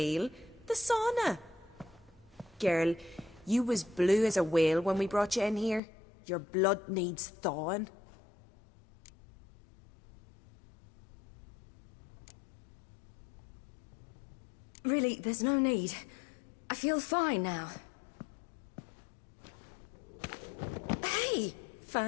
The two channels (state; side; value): drops out; right; at 5.8 s